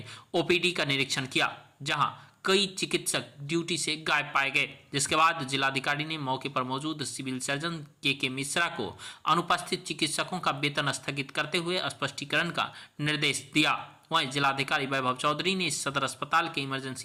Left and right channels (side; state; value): both; identical; correlation 1.00